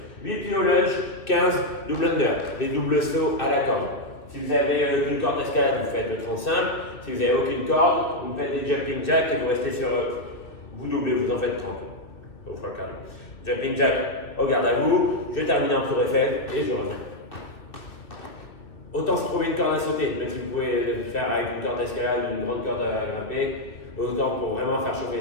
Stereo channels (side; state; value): right; late; 2.3 ms